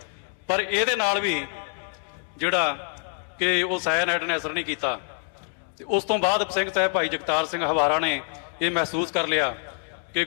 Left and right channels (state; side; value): silent; right; digital silence